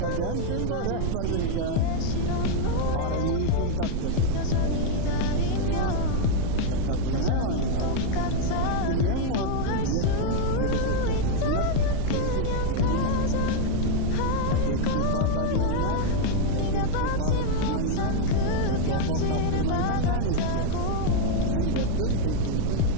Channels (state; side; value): different; both; correlation 0.00